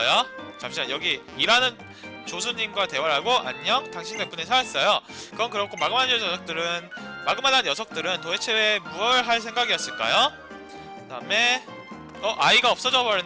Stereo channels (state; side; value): identical; both; correlation 1.00